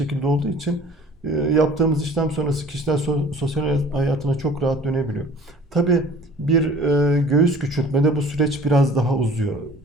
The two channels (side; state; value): both; normal; correlation 0.48